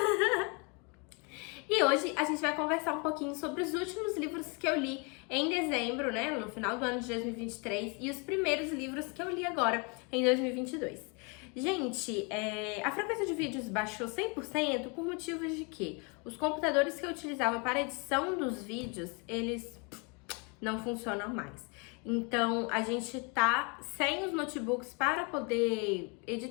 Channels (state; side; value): quieter; right; 32.8 dB